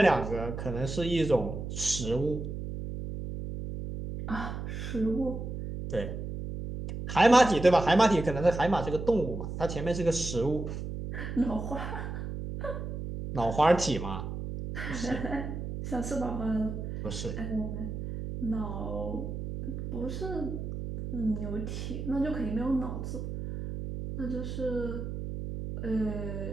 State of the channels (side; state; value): right; noise; hum, 6 dB below the sound